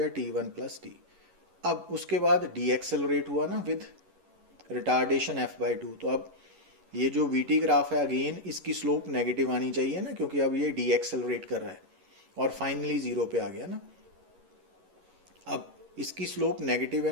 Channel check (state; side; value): late; left; 11 ms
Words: t1 प्लस t. अब उसके बाद डी एक्सेलरेट हुआ ना विद रिटार्डेशन f बाई 2. तो अब ये जो vt ग्राफ है अगेन इसकी स्लोप नेगेटिव आनी चाहिए ना, क्योंकि अब ये डी एक्सेलरेट कर रहा है और फाइनली 0 पे आ गया ना. अब इसकी स्लोप नेगेटिव है